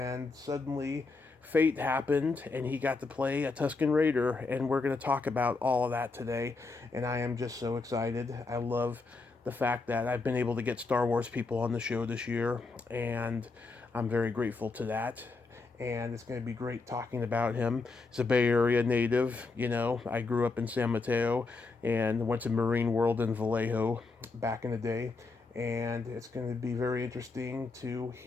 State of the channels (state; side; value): quieter; right; 3.9 dB